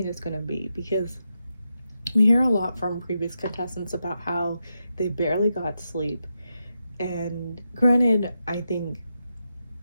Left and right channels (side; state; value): both; inverted; correlation -0.86